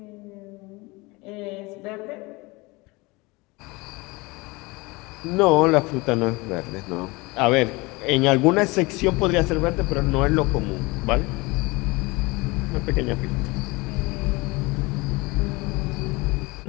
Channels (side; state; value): right; quieter; 24.2 dB